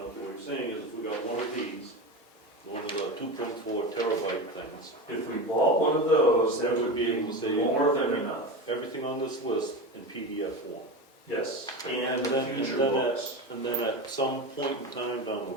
what you're saying is if we got one of these, one of the 2.4 terabyte things, If we bought one of those, that we would would be be able to say more than enough. everything on this list in PDF form. Yes, and And the then, future and then books. and then at some point in time down the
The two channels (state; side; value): normal; both; correlation 0.24